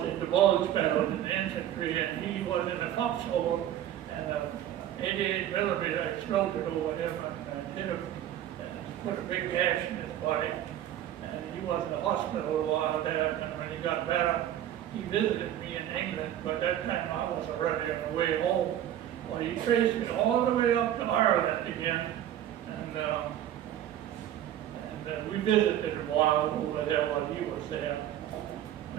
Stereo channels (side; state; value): left; quieter; 11.6 dB